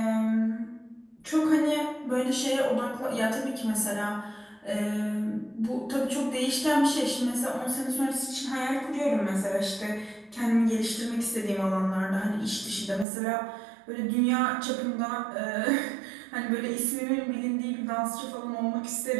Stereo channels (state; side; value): drops out; left; at 13.1 s